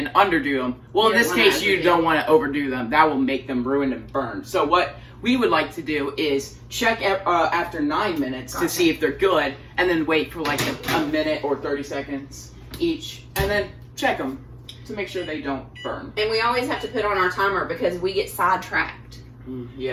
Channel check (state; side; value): identical; both; correlation 1.00